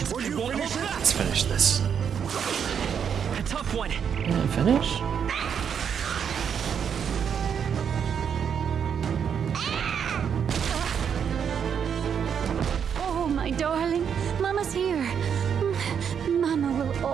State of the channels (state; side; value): quieter; left; 7.6 dB